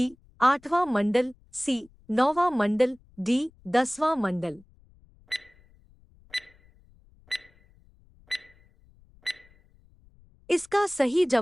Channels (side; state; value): left; noise; rumble, 29 dB below the sound